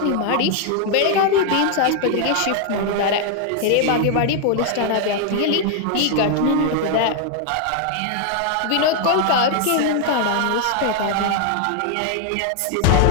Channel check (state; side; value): different; both; correlation 0.00